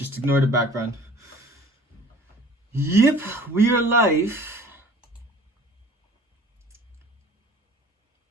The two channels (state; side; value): normal; both; correlation 0.48